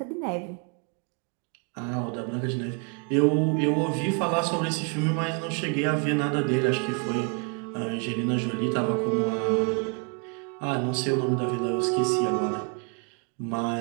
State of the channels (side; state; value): left; quieter; 37.4 dB